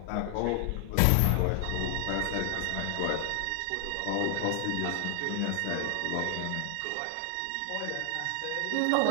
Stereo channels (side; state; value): both; different; correlation 0.00